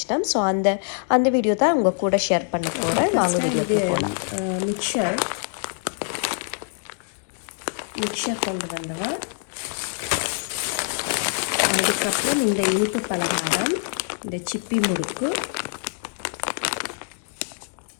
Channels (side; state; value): right; silent; 62 dB below the other